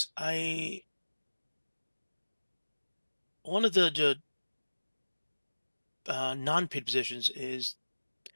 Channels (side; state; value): both; inverted; correlation -1.00